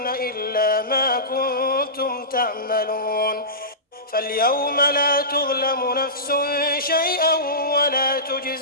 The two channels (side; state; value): both; normal; correlation -0.20